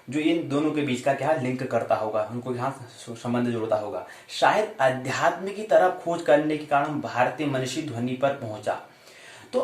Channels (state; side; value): identical; both; correlation 1.00